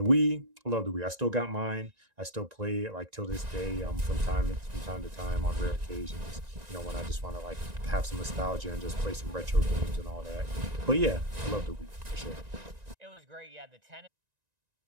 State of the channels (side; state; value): left; late; 1.9 ms